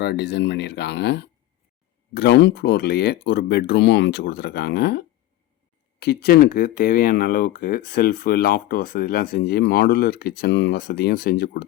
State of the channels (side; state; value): right; quieter; 15.2 dB